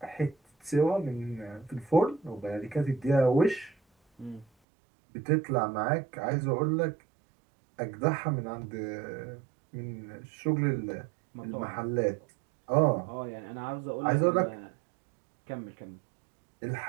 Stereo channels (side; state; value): left; drops out; at 4.5 s